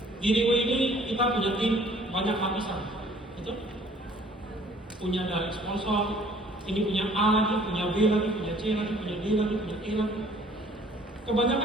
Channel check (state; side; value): normal; both; correlation 0.56